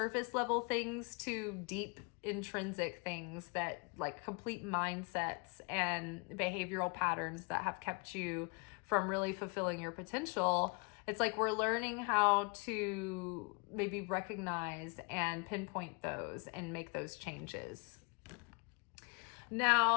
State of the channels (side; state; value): right; quieter; 32.5 dB